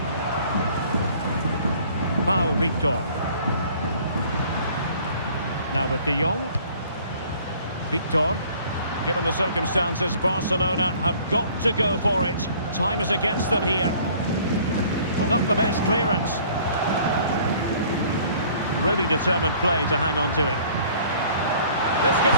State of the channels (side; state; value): both; inverted; correlation -0.54